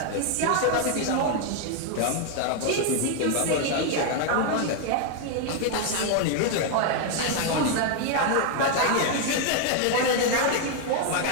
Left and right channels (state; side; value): different; both; correlation 0.00